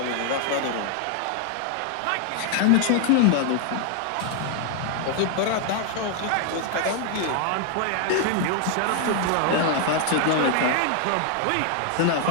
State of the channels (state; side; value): different; both; correlation 0.00